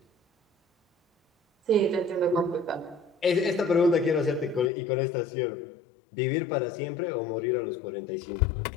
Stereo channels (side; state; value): right; drops out; at 4.7 s